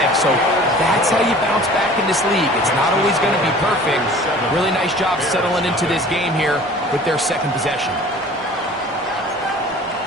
So that's how you bounce back in this league. It's not always going to be perfect. Really nice job settling into this game here with their second possession.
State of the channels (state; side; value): normal; both; correlation 0.46